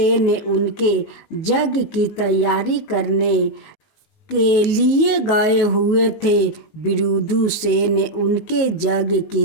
उनके यज्ञ की तैयारी करने के लिए गए हुए थे। विदुसेन उनके यज्ञ की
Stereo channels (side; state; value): right; late; 19 ms